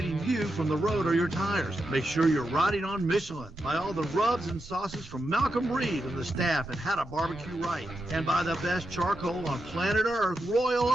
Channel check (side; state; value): both; normal; correlation 0.86